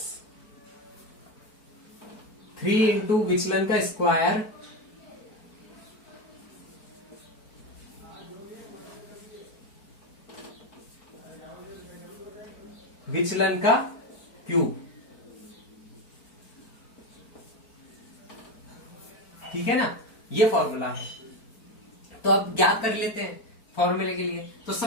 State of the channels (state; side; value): late; right; 4.5 ms